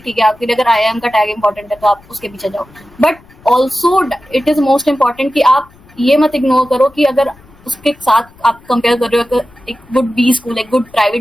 है, आपके लिए अगर आईआईएम का टैग इंपॉर्टेंट है तो आप उसके पीछे जाओ। But also it is most important कि आप ये मत इग्नोर करो कि अगर उसके साथ आप कंपेयर कर रहे हो एक गुड बी स्कूल, एक गुड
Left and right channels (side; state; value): left; noise; rumble, 26 dB below the sound